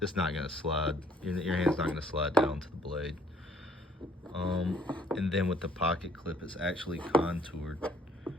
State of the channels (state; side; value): normal; both; correlation 0.62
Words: slide. Your hand's not gonna slide down to the blade. And then with the pocket clip, it's actually contoured,